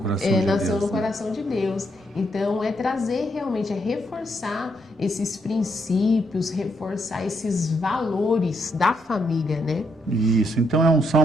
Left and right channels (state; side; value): normal; both; correlation 0.76